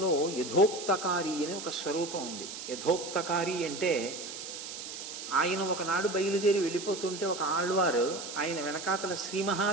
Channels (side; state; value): right; noise; hiss, 9 dB below the sound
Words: యథోక్తకారి అని ఒక స్వరూపం ఉంది. యథోక్తకారి అంటే ఆయన ఒకనాడు బయలుదేరి వెళ్ళిపోతుంటే ఒక ఆళ్వారు ఆయన వెనకాతల శ్రీ